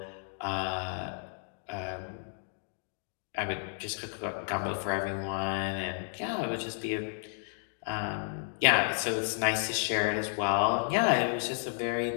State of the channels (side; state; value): right; silent; 56 dB below the other